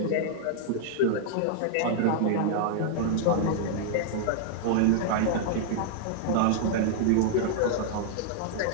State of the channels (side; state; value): both; different; correlation -0.01